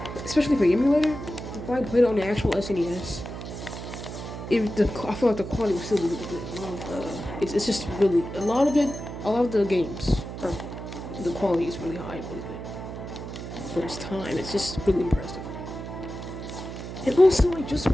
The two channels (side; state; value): right; noise; hum, 9 dB below the sound